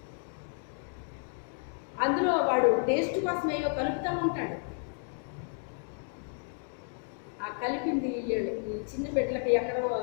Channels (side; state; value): right; silent; 57 dB below the other